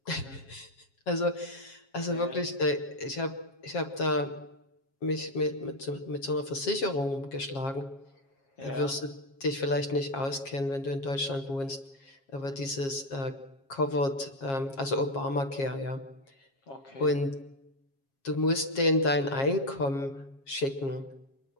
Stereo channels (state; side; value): late; right; 7.4 ms